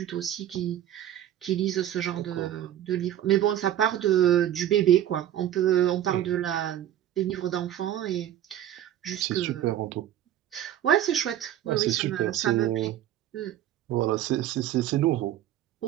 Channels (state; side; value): quieter; left; 11.7 dB